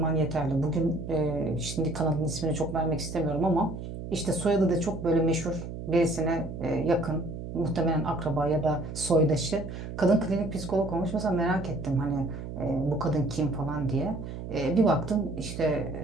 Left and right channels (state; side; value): noise; right; hum, 8 dB below the sound